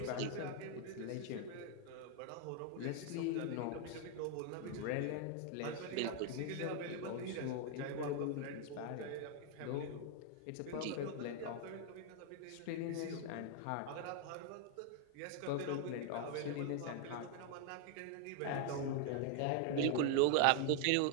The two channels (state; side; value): different; both; correlation 0.00